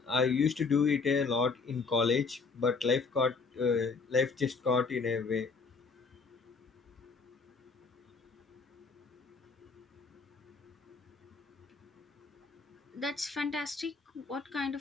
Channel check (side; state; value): right; quieter; 4.5 dB